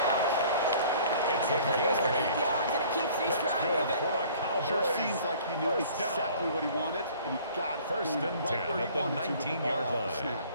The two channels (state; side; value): inverted; both; correlation -0.52